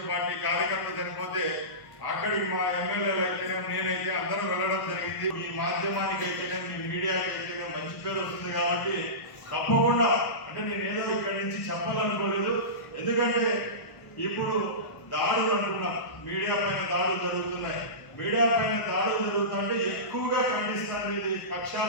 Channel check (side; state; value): right; late; 1.1 ms